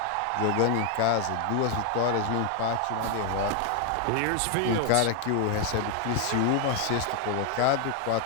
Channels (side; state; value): both; different; correlation 0.01